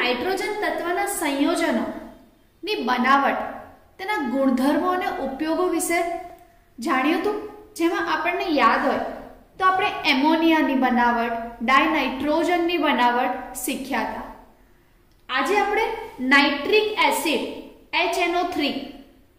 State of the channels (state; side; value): identical; both; correlation 1.00